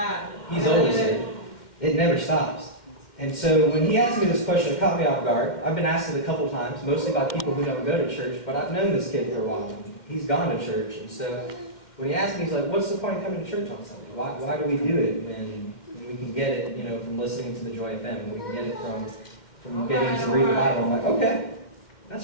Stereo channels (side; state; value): right; late; 2.1 ms